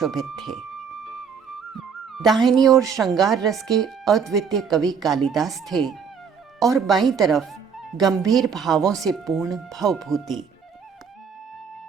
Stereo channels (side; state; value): left; quieter; 6.4 dB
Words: थे। दाहिनी ओर श्रृंगार रस के अद्वितीय कवि कालिदास थे और बाईं तरफ गंभीर भावों से पूर्ण भवभूति।